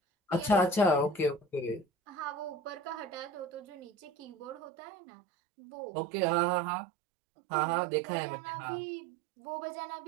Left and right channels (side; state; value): left; drops out; at 4.7 s